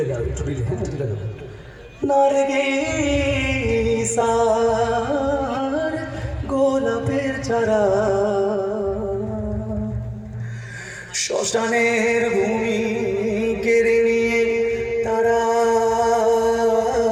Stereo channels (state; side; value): identical; both; correlation 1.00